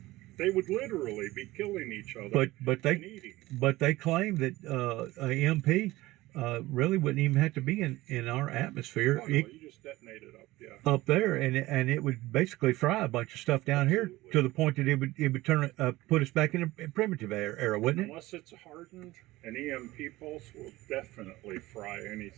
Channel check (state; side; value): quieter; left; 18.4 dB